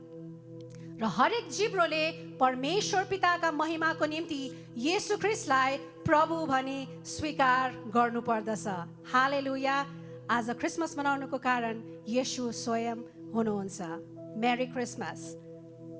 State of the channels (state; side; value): identical; both; correlation 1.00